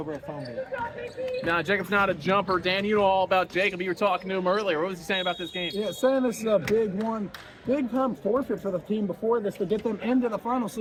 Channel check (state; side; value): identical; both; correlation 1.00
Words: a phone booth. Nah, Jacob's not a jumper. Dan, you know all about Jacob. You were talking to him earlier. What was he saying about this game? Yeah, saying this is a big one. Big time forfeit for the team before this to get them into the finals.